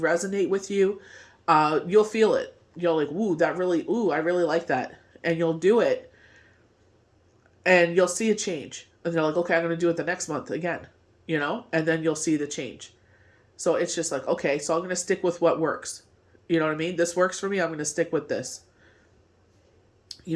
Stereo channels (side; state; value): both; identical; correlation 1.00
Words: with you. You'll feel it. You're like, I really like that. And you'll do it and you'll see a change. And they're like, okay, I'm going to do it the next month again, and then you'll see the change. So it's just like, okay, so I'm going to stick with what works. You know what I mean? This works for me. I'm going to stick with this.